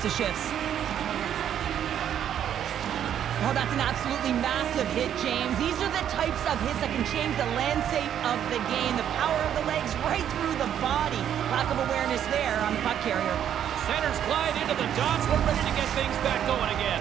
of shifts. Oh, that's an absolutely massive hit, James. These are the types of hits that can change the landscape of the game. The power of the legs right through the body. Lack of awareness there on the puck carrier. Centers glide into the dots. We're ready to get things back going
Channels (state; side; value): quieter; left; 9.8 dB